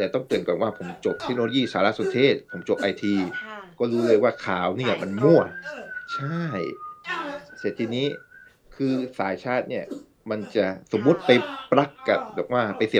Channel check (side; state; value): both; identical; correlation 1.00